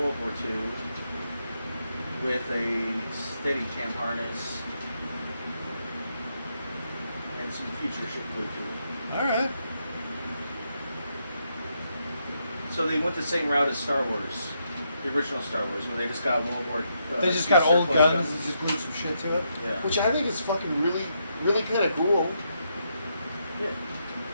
War II with a Steadicam harness and some future shit glued to it. Alright. So they went the same route as Star Wars, the original Star Wars, where they just got World War. They just II got old surplus guns and just glued some shit to it. Yeah. Which I think is fucking really, really kind of cool. Yeah.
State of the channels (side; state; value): both; inverted; correlation -0.79